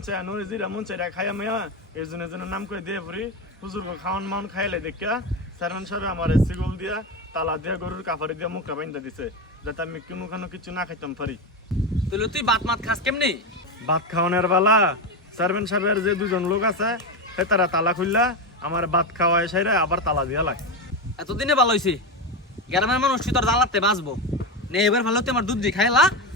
চাই নুরি জিরা মন চাই খাইয়া মেয়া এই জন্য নাম করে দিয়ে পড়ি হুজুর খাওয়ান মাউন খাইলে দেখিয়া চেয়ারম্যান সাহেব আমার সিগুল দিয়া তালা দিয়া গরুর কাপড়ে দিয়া মুখটা বাইন্দা দিছে যাতে আমি কোনো কিছু না খাইতাম পারি তাহলে তুই ভাত মাত খাস কেমনি ভাত খাওয়ানোর বেলা চেয়ারম্যান সাহেবের যে দুজন লোক আছে সে তারা তালা খুললা আমার ভাত খাওয়ায় সাইরে আবার তালা দিয়া লাগে এতদিনে ভালো হয়েছে গ্রামের মানুষ তুই তোর জ্বালাতে বাঁচবো নে এবার ভালো তুই আমার দুধ দিয়ে খাইলা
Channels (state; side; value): normal; both; correlation 0.15